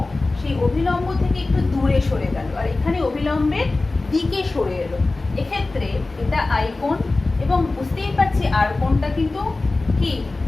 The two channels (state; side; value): quieter; right; 3.3 dB